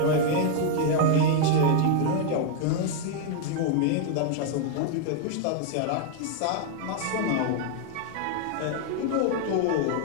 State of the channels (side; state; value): both; different; correlation 0.00